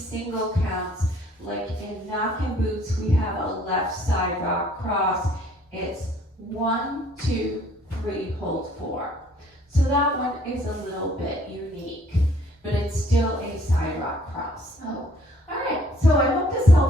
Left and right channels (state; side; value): normal; both; correlation 0.60